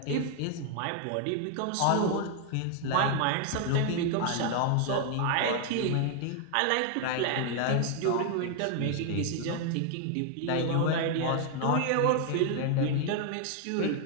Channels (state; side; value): different; both; correlation 0.00